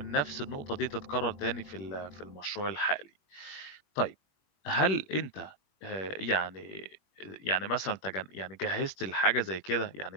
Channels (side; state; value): right; late; 21 ms